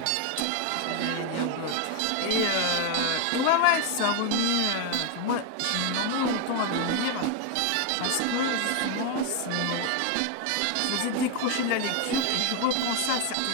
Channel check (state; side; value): different; both; correlation 0.01